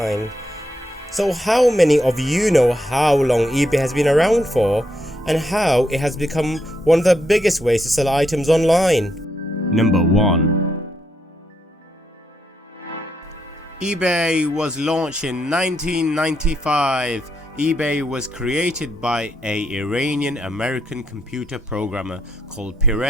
So how many of you know how long eBay has been around for and how it has become one of the biggest ways to sell items online? Number 1. eBay was launched in 1995. eBay was created by an Iranian-American computer programmer called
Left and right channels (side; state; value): both; normal; correlation 0.78